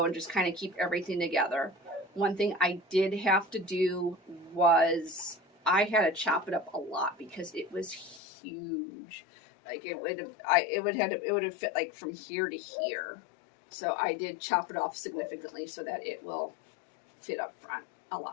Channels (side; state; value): right; drops out; at 8.2 s